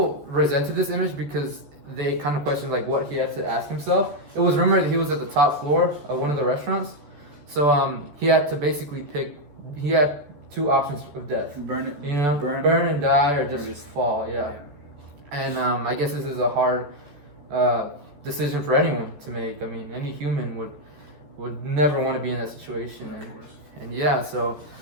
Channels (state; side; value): late; left; 14 ms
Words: resented this image because they kind of questioned like what he had to ask himself. It was rumored that he was at the top floor of one of the restaurants. So he had to basically pick, he had two options of death. Burn it. You know, burn and die or just fall. Yeah. And I guess this is a hard decision for anyone to make. I mean, any human would never want to be in that situation. And yeah, so